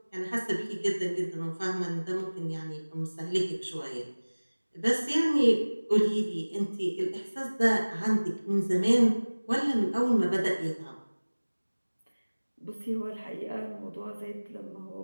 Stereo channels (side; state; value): both; inverted; correlation -1.00